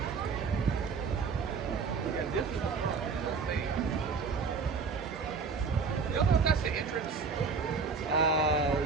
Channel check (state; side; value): quieter; left; 5.1 dB